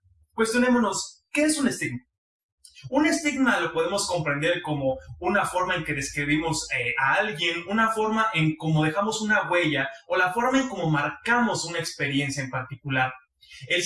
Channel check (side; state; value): both; identical; correlation 1.00